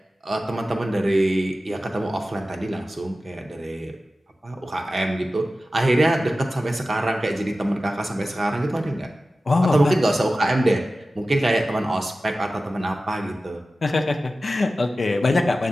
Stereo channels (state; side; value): normal; both; correlation 0.94